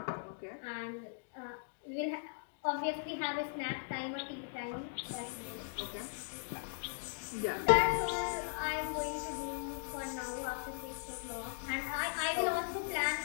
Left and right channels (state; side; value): silent; right; digital silence